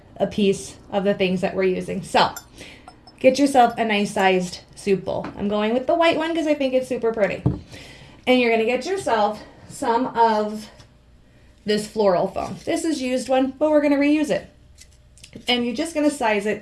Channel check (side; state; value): both; identical; correlation 1.00